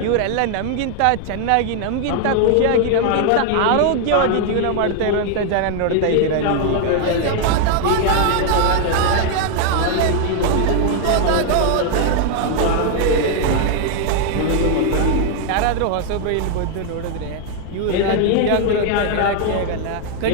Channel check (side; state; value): both; different; correlation 0.00